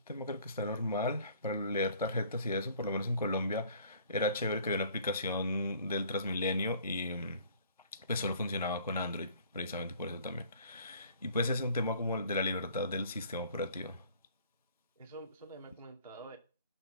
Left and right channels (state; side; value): inverted; both; correlation -0.54